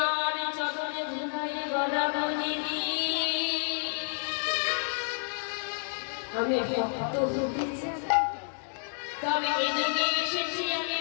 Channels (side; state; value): right; silent; digital silence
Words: চরণে ধুলাই গলা বলি দিয়ে আমি ভক্ত হতে চাই তবে এই যুগে এসেছি আমি